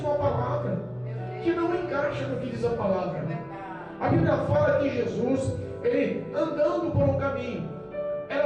a palavra, que não encaixa no que diz a palavra. A Bíblia fala que Jesus, ele andando por um caminho,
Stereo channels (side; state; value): both; identical; correlation 1.00